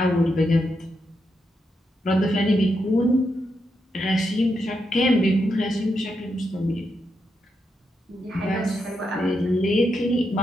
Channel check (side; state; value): both; normal; correlation 0.83